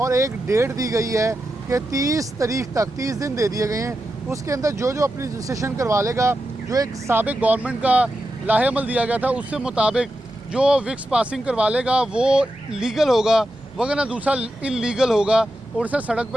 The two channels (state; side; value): normal; both; correlation 0.89